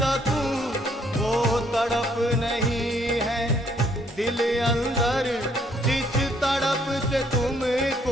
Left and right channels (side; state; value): both; normal; correlation 0.67